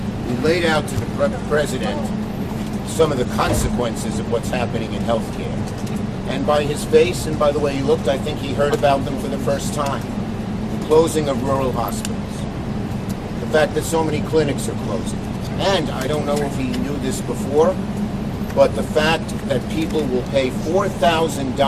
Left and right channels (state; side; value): identical; both; correlation 1.00